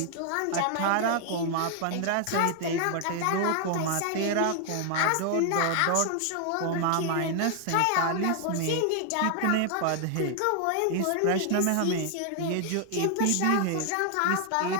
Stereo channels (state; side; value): different; both; correlation 0.00